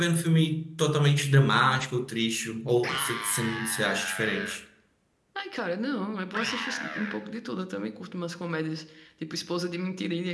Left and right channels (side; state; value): both; identical; correlation 1.00